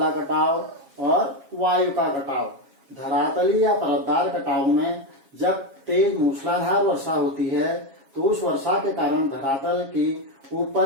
कटाव और वायु का कटाव। धरातली या परतदार कटाव में जब तेज मूसलाधार वर्षा होती है तो उस वर्षा के कारण धरातल की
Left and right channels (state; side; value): late; left; 7.3 ms